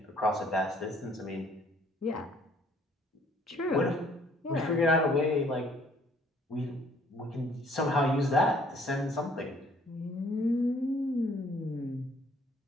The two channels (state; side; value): normal; both; correlation 0.61